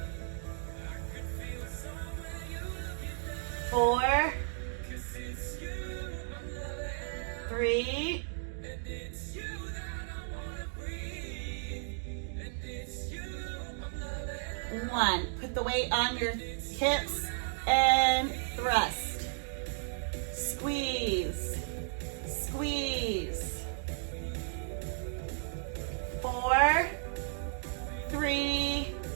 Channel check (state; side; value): silent; left; digital silence